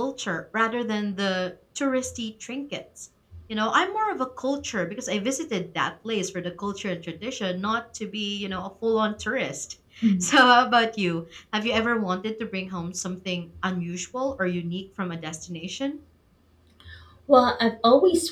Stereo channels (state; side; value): identical; both; correlation 1.00